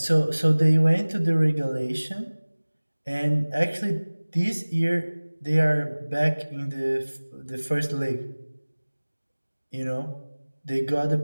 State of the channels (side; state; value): both; inverted; correlation -1.00